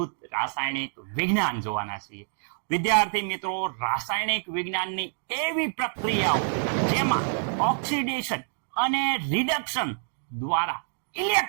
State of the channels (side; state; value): left; silent; digital silence